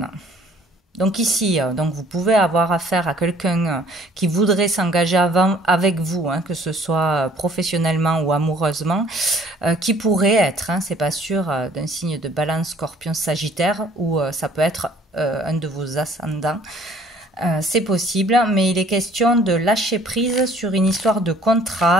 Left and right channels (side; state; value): both; normal; correlation 0.56